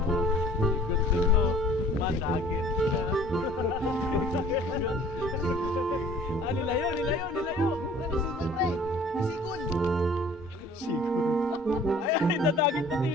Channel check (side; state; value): both; normal; correlation 0.51